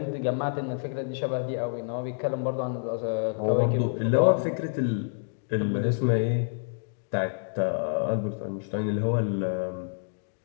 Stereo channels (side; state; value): right; silent; digital silence